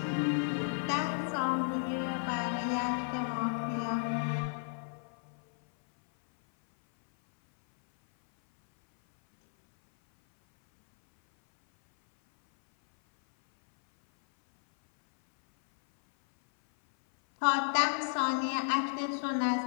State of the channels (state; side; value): silent; right; 56 dB below the other